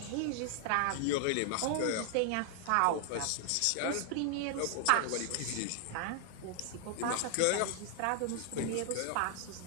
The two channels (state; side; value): different; both; correlation 0.00